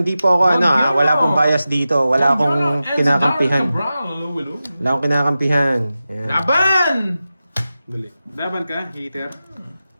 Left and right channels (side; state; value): both; inverted; correlation -0.93